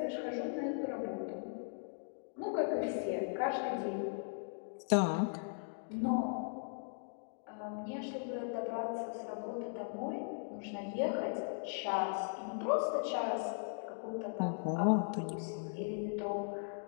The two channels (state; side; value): silent; right; digital silence